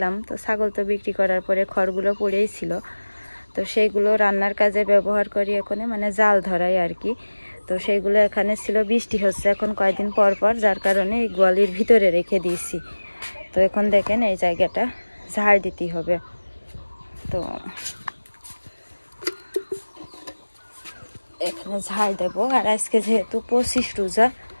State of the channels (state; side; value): inverted; both; correlation -1.00